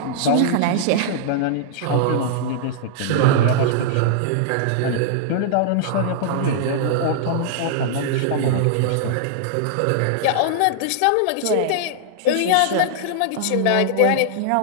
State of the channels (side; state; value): both; different; correlation -0.01